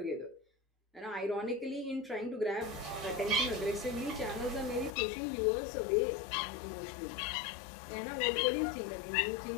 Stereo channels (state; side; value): drops out; right; at 4.9 s